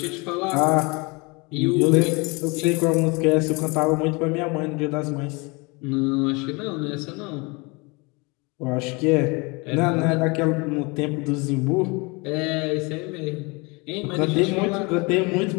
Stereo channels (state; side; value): quieter; right; 28.0 dB